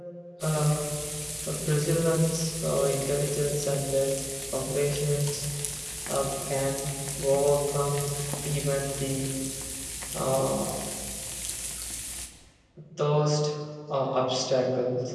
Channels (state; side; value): identical; both; correlation 1.00